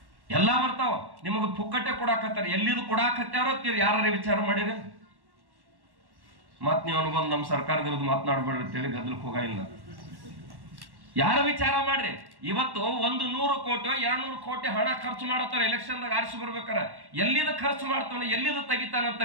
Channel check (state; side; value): late; left; 1.1 ms